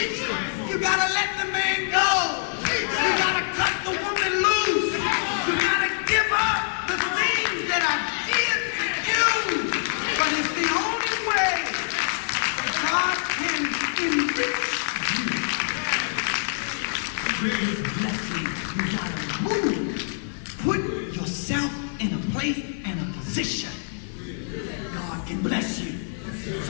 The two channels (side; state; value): right; silent; 62 dB below the other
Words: You gotta let the man go. You gotta cut the woman loose. You gotta give up the things that I did. But it's the only way God can enrich you. With his blessing, you gotta move. Put yourself in a place and a position that God can bless you.